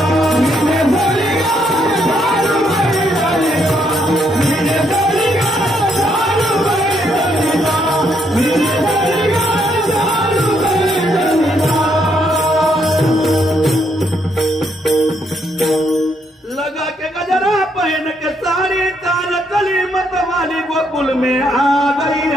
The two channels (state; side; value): normal; both; correlation 0.74